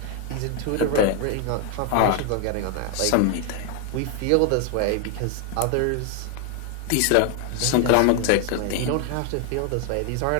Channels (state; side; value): different; both; correlation 0.00